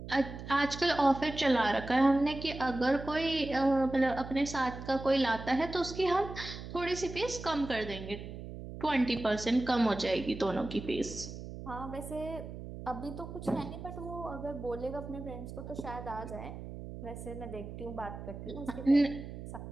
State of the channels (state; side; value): noise; right; hum, 10 dB below the sound